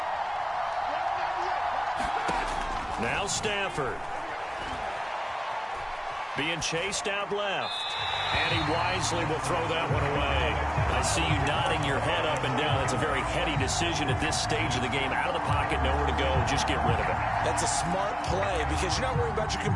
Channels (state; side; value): identical; both; correlation 1.00